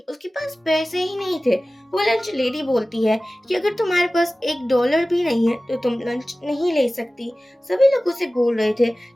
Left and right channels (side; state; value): both; normal; correlation 0.97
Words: उसके पास पैसे ही नहीं थे। वो लंच लेडी बोलती है कि अगर तुम्हारे पास $1 भी नहीं है तो तुम लंच नहीं ले सकती। सभी लोग उसे बोल रहे थे